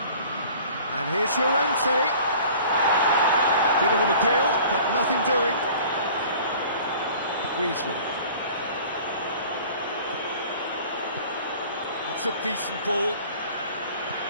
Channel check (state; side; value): inverted; both; correlation -0.47